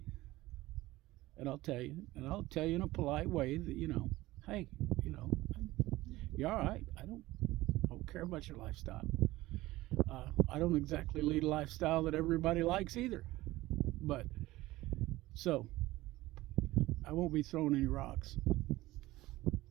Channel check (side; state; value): left; quieter; 17.9 dB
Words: And I'll tell you. And I'll tell you in a polite way that, hey, you're all right. I don't care about your lifestyle. I don't exactly lead a lifestyle that everybody likes either. But, so, I won't be throwing any rocks.